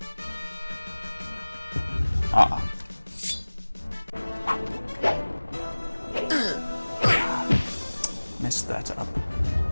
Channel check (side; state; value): both; inverted; correlation -1.00